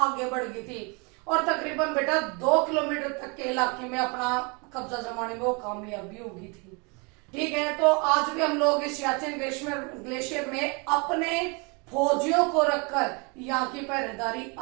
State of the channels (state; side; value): quieter; left; 31.4 dB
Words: बढ़ गई थी और तकरीबन बेटा 2 किलोमीटर तक के इलाके में अपना कब्जा जमाने में वो कामयाबी होगी थी। ठीक है, तो आज भी हम लोग इस सियाचिन ग्लेशियर में अपने फौजियों को रखकर यहाँ की पहरेदारी